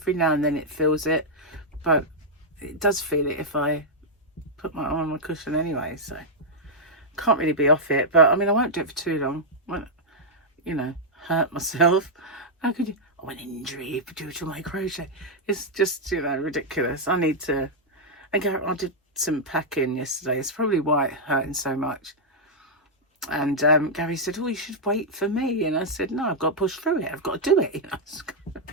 now and then it feels it, but it does feel it if I put my arm on my cushion anyway. So can't really be off it. But I mean, I won't do it for too long. Won't, you know, hurt myself. How could you? Oh, an injury due to my crochet. It's just, you know, ridiculous. I need to. And I did some packing yesterday. It's probably why it's hurting so much. And Gary said, oh, you should wait for me. And I said, no, I've got to push through it. I've got to do it. You know?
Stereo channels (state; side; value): normal; both; correlation -0.05